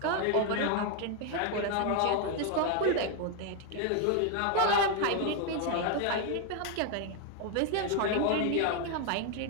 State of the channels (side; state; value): both; different; correlation 0.01